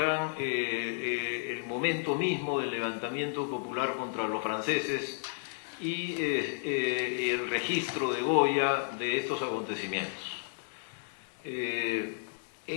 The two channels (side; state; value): right; silent; 56 dB below the other